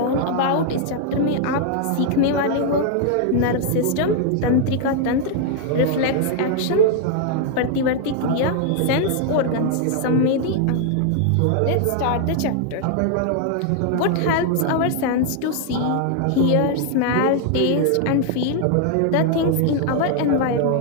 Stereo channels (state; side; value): different; both; correlation 0.00